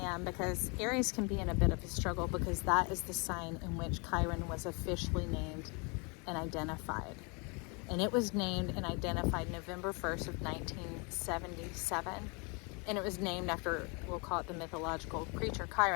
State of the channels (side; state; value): right; quieter; 31.9 dB